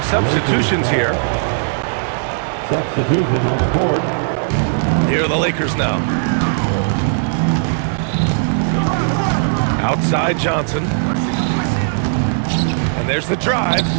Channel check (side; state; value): left; silent; 64 dB below the other